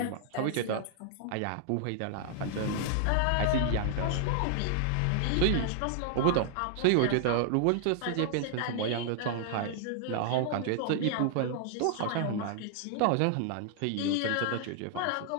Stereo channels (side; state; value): both; different; correlation -0.01